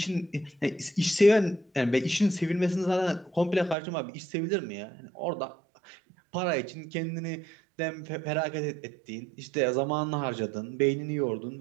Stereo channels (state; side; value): drops out; left; at 3.8 s